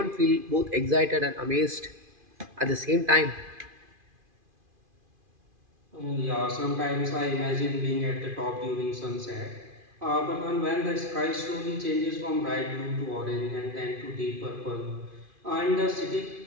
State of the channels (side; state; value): left; late; 2.5 ms